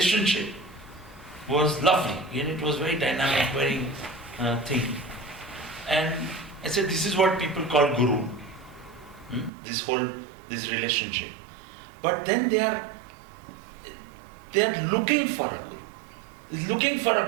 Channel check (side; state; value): left; drops out; at 9.5 s